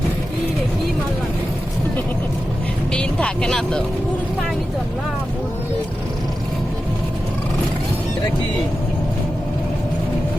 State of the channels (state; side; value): normal; both; correlation 0.92